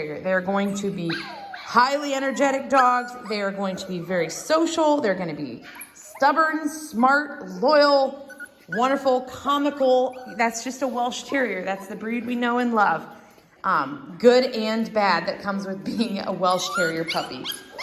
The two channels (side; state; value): both; identical; correlation 1.00